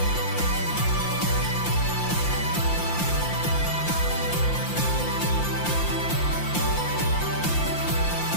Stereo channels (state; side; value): late; right; 5.8 ms